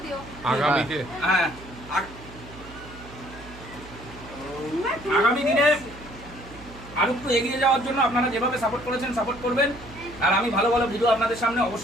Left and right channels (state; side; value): noise; right; hum, 17 dB below the sound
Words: দিও। আগামীতে হ্যাঁ, আগামী দিনে আরো একটু এগিয়ে যাওয়ার জন্য আপনারা যেভাবে সাপোর্ট করেছেন সাপোর্ট করবেন। আর আমি ভালো ভালো ভিডিও আপনাদের সামনে